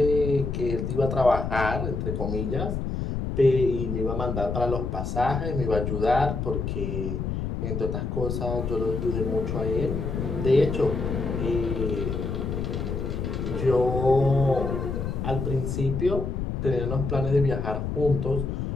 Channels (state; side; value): noise; left; rumble, 3 dB below the sound